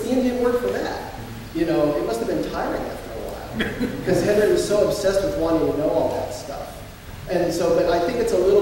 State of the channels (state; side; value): identical; both; correlation 1.00